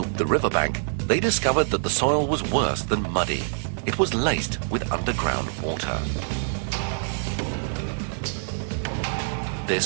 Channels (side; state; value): left; silent; 56 dB below the other